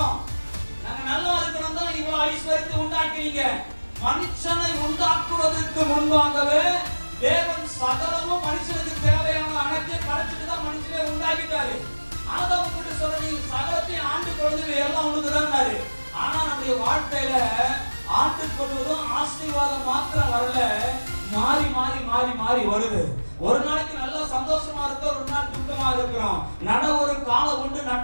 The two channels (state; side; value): inverted; both; correlation -1.00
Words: நாங்க நல்லா இருக்கணும் தான் இவ்வளவு ஐஸ்வர்யத்தை உண்டாக்குறீங்க. மனுஷனை உண்டாக்குவதற்கு முன்பாகவே தேவன் சகலமும் மனுஷனுக்கு தேவையான அனைத்தையும் படைச்சிட்டு தான் மனுஷனை உண்டாக்கிட்டாரு. ஆதாம் கிட்ட சொல்ற, நீ சகலத்தையும் ஆண்டு கொள்வது எல்லாம் உனக்கு தான். ஆனா நம்முடைய வாழ்க்கையில ஆண்டு கொள்வதும் ஆசீர்வாதம் மாத்திரம் வரல, மாறி மாறி மாறி மாறி வருது. ஒரு நாளைக்கு நல்லா சந்தோஷமா இருக்க, ஒரு நாள் துக்கமா இருக்கிறோம். நட ஒரு காலம் உண்டு,